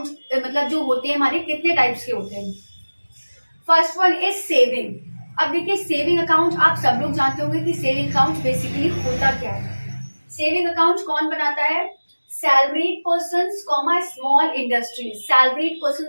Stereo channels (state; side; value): inverted; both; correlation -1.00